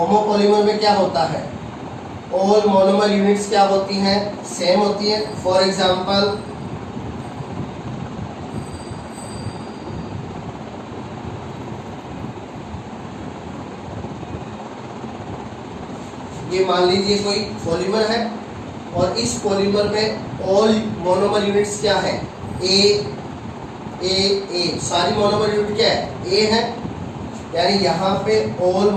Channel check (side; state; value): both; identical; correlation 1.00